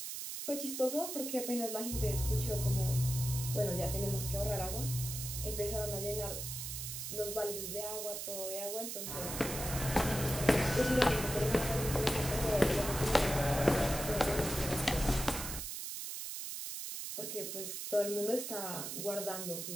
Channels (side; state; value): right; noise; hiss, 5 dB below the sound